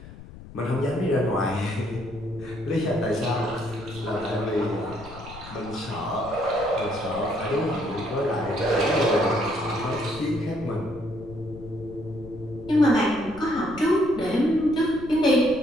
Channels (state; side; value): noise; left; rumble, 16 dB below the sound